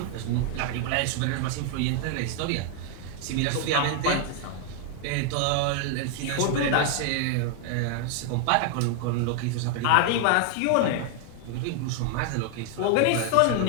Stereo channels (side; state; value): both; different; correlation 0.00